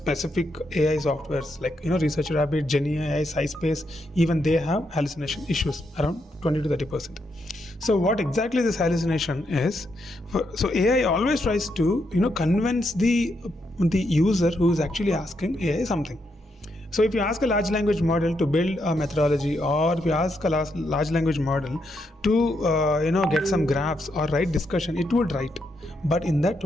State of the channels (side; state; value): both; normal; correlation 0.80